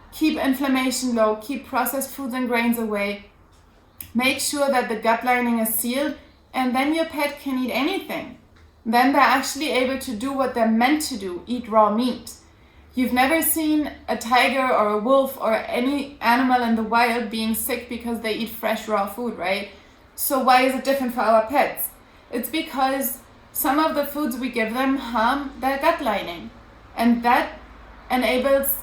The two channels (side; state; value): both; identical; correlation 1.00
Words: keep inflammation low, keep processed foods and grains away, make sure that the gut lining is sealed, and then your pet can eat anything. then they're actually able to do what they're meant to do, eat raw meat. You've never seen a tiger or a wolf or any animal in the wild being sick because they eat fresh raw food, right? So why is it different for our pets? It's because some of the foods we give them harm their gut lining, and that enables